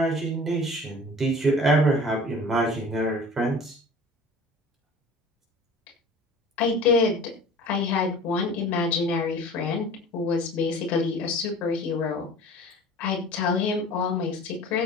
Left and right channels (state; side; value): normal; both; correlation 0.43